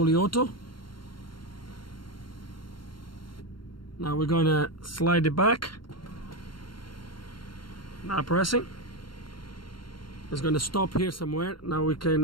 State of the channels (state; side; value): late; right; 0.72 ms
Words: auto. Now we're going to slide it back. Not pressing. It's going to stop here somewhere. Now we